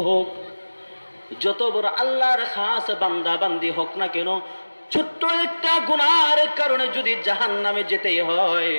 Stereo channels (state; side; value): inverted; both; correlation -1.00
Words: হোক, যত বড় আল্লাহর খাস বান্দা বান্দি হোক না কেন, ছোট্ট একটা গুনাহের কারণে যদি জাহান্নামে যেতেই হয়,